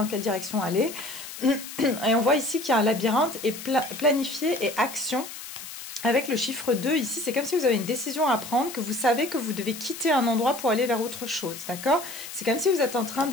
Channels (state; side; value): noise; left; hiss, 11 dB below the sound